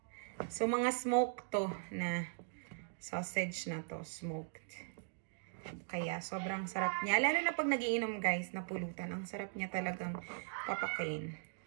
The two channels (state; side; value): silent; left; digital silence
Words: So, mga smoked to na sausage na to. Smoked. Kaya, sobrang sarap niya. Lalo na pag nagiinom guys, na pulutan. Ang sarap niya talagang papakain.